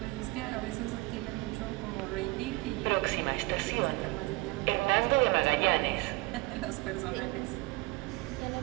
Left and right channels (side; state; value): left; quieter; 22.2 dB